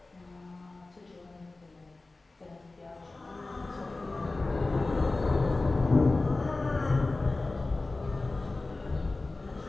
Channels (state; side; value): quieter; right; 3.3 dB